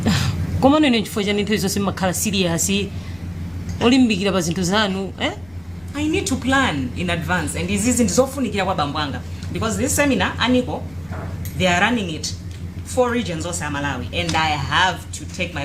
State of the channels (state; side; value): noise; left; rumble, 27 dB below the sound